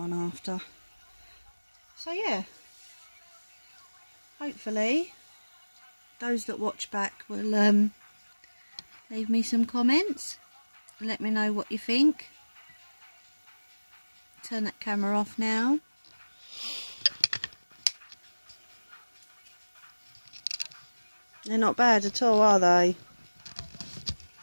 after. So yeah, hopefully those that watch back will leave me some comments and let me know what you think. Turn that camera off now. They're not bad at all, are they?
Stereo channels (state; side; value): inverted; both; correlation -1.00